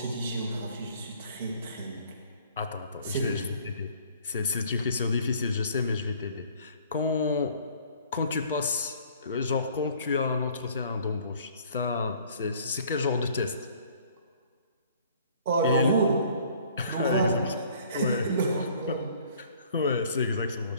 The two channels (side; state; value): both; inverted; correlation -0.55